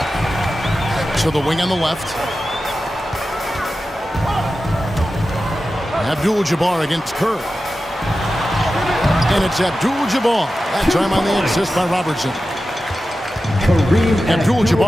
To the wing on the left. Abdul-Jabbar against Curry. And it's Abdul-Jabbar. That time on the assist by Robertson.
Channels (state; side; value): normal; both; correlation 0.93